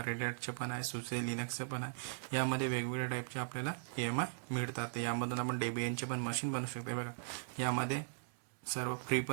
रेड हॅटचे पण आहे, सुसे लिनक्सचं पण आहे. यामध्ये वेगवेगळ्या टाईपचे आपल्याला EMI मिळतात. यामधून आपण डेबियनचे पण मशीन बनवू शकतो. बघा, यामध्ये सर्व फ्री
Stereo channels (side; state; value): left; silent; digital silence